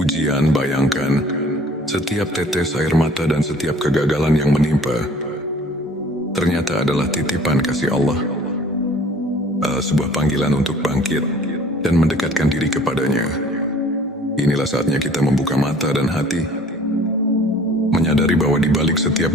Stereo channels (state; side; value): normal; both; correlation 0.51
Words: Bayangkan, setiap tetes air mata dan setiap kegagalan yang menimpa ternyata adalah titipan kasih Allah, sebuah panggilan untuk bangkit dan mendekatkan diri kepadanya. Inilah saatnya kita membuka mata dan hati, menyadari bahwa di balik